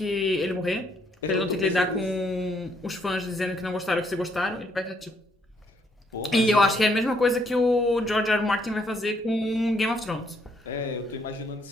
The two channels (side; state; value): both; normal; correlation 0.70